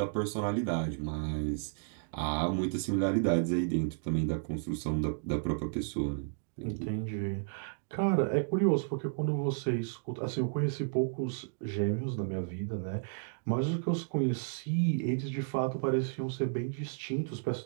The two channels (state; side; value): silent; left; digital silence